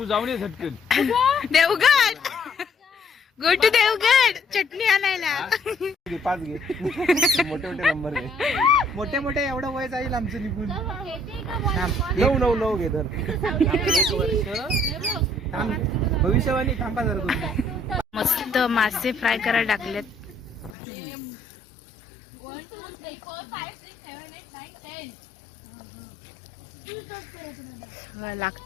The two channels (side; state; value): right; drops out; at 20.8 s